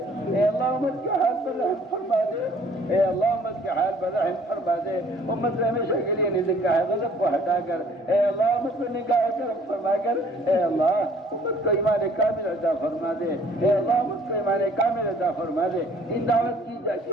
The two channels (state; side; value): normal; both; correlation 0.56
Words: اے اللہ امت کے حال پر رحم فرما دے، اے اللہ امت کے حال پر رحم فرما دے۔ امت سے ہمیشہ کے لیے نگاہ غضب کو ہٹا کر اے اللہ امت کو نگاہ کرم فرما کر اے اللہ امت کو ایمان کامل عطا فرما دے، اے اللہ امت کو ایمان کامل عطا فرما دے۔ ان دعوت کی